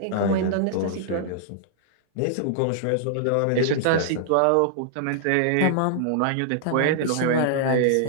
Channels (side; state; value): both; different; correlation -0.01